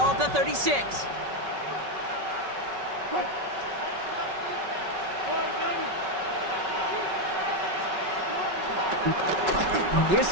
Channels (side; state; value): left; late; 5.3 ms